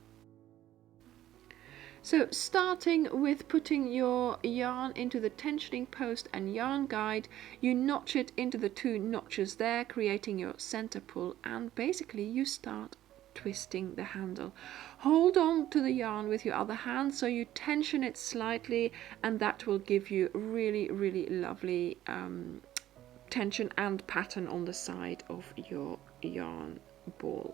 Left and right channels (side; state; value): left; quieter; 13.2 dB